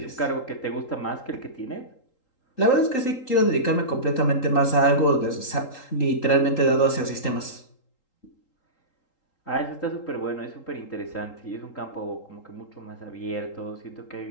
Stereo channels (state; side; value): late; right; 3.8 ms